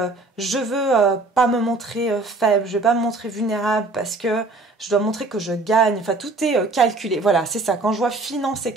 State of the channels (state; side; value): quieter; left; 3.3 dB